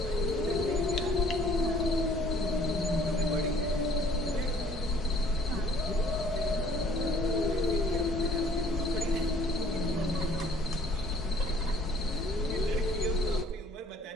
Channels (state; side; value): normal; both; correlation 0.57